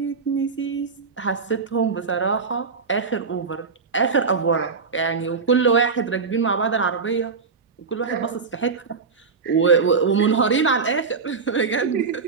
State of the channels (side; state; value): left; quieter; 5.0 dB